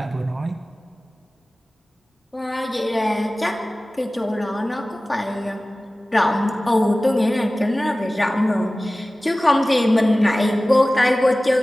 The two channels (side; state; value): both; normal; correlation 0.97